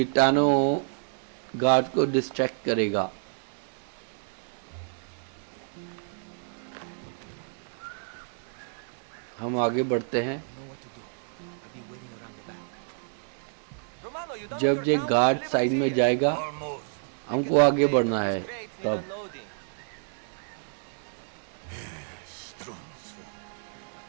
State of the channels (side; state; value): left; silent; digital silence